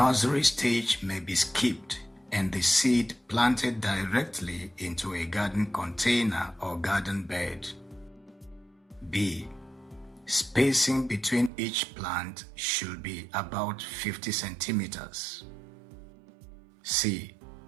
stage may be skipped and the seed planted directly into a garden container or garden bed. B. Spacing between each plant should be about 50 centimeters. C.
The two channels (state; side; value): drops out; left; at 11.5 s